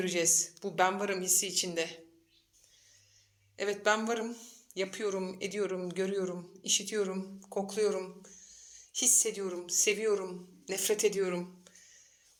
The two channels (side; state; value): both; identical; correlation 1.00